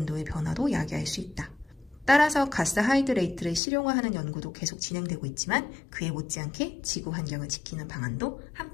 변화도 야기할 수 있다. 따라서 가스 하이드레이트를 실용화하는 연구도 계속 진행되고 있지만 그에 못지않게 지구 환경을 지키는 방안도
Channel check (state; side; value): drops out; right; at 3.6 s